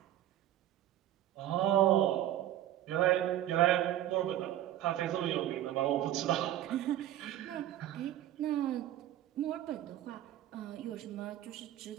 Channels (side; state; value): left; quieter; 12.8 dB